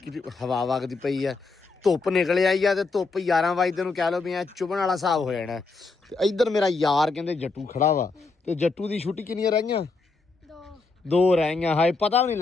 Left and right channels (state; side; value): quieter; right; 4.0 dB